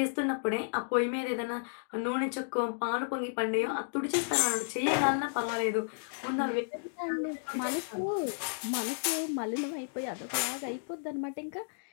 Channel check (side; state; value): right; silent; digital silence